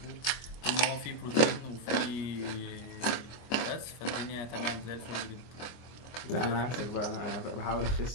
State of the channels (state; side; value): late; right; 24 ms